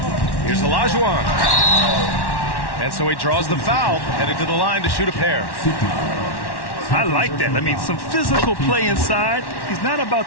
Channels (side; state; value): right; late; 1.1 ms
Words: Here's Olajuwon. And so he draws the foul, headed to the line to shoot a pair. I like that. I mean, some physical play inside. He's not about